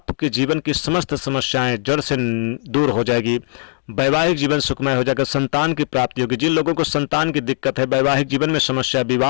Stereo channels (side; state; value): right; silent; 62 dB below the other